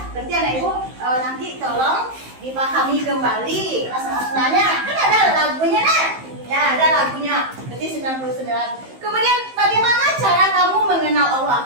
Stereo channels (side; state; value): left; late; 15 ms